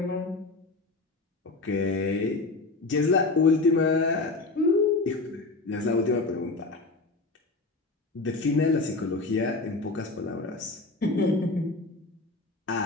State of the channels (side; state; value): right; quieter; 3.4 dB